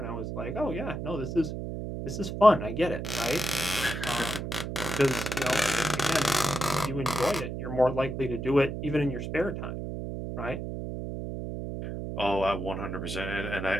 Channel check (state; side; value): noise; right; hum, 5 dB below the sound